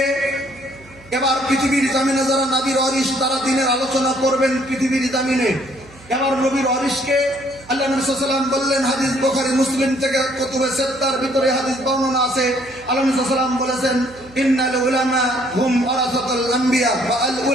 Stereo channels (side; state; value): right; noise; hum, 24 dB below the sound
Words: এবার পৃথিবীর জমিনে যারা নবীর ওয়ারিস, তারা দিনের আলোচনা করবেন পৃথিবীর জমিনে। এবার নবীর ওয়ারিসকে আল্লাহ নবী সাল্লাল্লাহু আলাইহি ওয়াসাল্লাম বললেন, হাদিস বুখারী মুসলিম থেকে কুতুবে সিত্তার ভিতরে হাদিস বর্ণনা আছে। আল্লাহ নবী সাল্লাল্লাহু আলাইহি ওয়াসাল্লাম বলেছেন, ইন্নাল উলামা হুম ওয়ারাসাতুল আম্বিয়া ওয়া আল